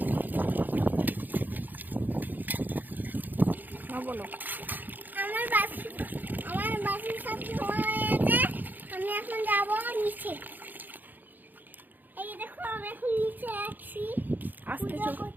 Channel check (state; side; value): late; left; 0.086 ms